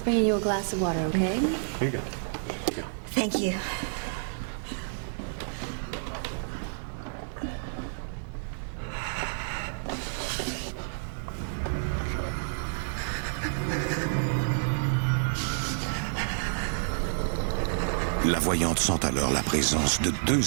bringing you a glass of water, okay? Here you go. Thank you. La voyante sent alors la présence de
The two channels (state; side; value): silent; left; 58 dB below the other